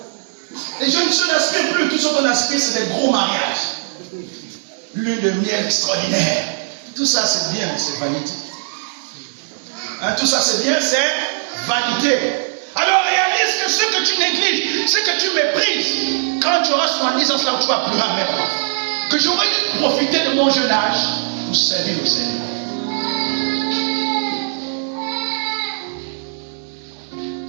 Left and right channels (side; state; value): left; silent; 66 dB below the other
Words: Les jeunes sœurs n'aspirent plus. Tout ce qu'on aspire, c'est des gros mariages. Lune de miel extraordinaire. Tout ça, c'est bien, c'est vanité. Hein, tout ça, c'est bien, c'est vanité. Alors réalise que ce que tu négliges, ce que tu méprises, quand tu auras 70 ans, là où tu vas pleurer amèrement. Que j'aurais dû profiter de mon jeune âge pour servir au Seigneur.